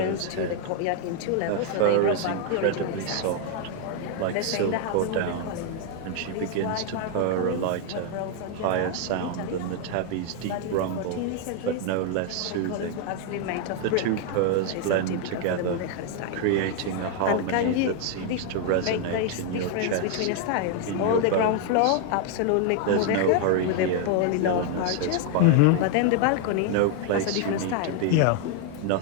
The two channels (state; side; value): different; both; correlation 0.00